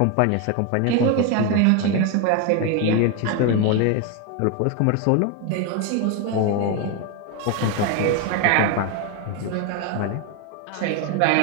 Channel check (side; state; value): both; different; correlation 0.02